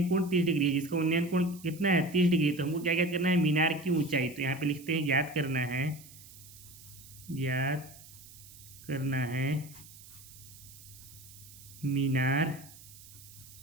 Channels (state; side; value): noise; right; hiss, 19 dB below the sound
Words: कोण 30 डिग्री है। जिसका उन्नयन कोण कितना है, 30 डिग्री। तो हमको क्या याद करना है, मीनार की ऊंचाई। तो यहाँ पे लिखते हैं याद करना है, याद करना है मीनार